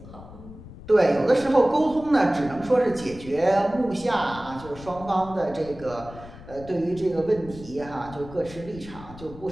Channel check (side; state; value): left; noise; rumble, 16 dB below the sound